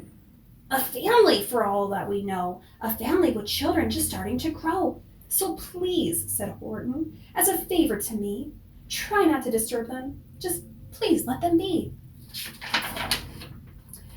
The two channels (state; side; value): identical; both; correlation 1.00